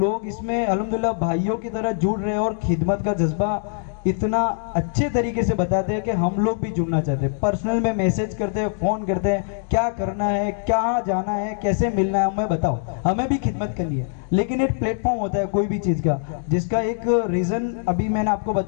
اس میں الحمدللہ بھائیوں کی طرح جڑ رہے ہیں, اور خدمت کا جذبہ اتنا اچھے طریقے سے بتاتے ہیں کہ ہم لوگ بھی جڑنا چاہتے ہیں. پرسنل میں میسج کرتے ہیں, فون کرتے ہیں, کیا کرنا ہے, کہاں جانا ہے, کیسے ملنا ہے, ہمیں بتاؤ, ہمیں بھی خدمت کرنی ہے. لیکن ایک پلیٹ فارم ہوتا ہے کوئی بھی چیز کا, جس کا ایک ریزن ابھی میں نے آپ کو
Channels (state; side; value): silent; right; digital silence